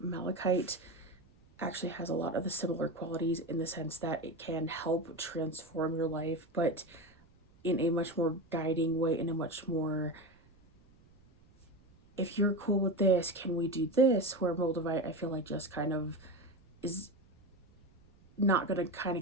actually has a lot of the similar qualities in the sense that it can help transform your life, but in a much more guiding way, in a much more, if you're cool with this, can we do this? Where Moldavite, I feel like, just kind of is not going to kind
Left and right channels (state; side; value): noise; right; rumble, 29 dB below the sound